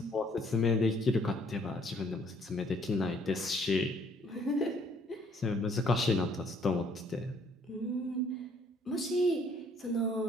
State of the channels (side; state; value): both; normal; correlation 0.63